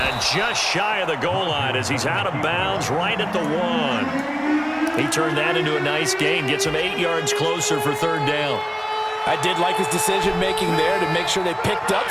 just shy of the goal line as he's out of bounds right at the 1. He turned that into a nice gain. Gets him 8 yards closer for 3rd down. I did like his decision-making there to make sure they picked up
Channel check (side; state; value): both; identical; correlation 1.00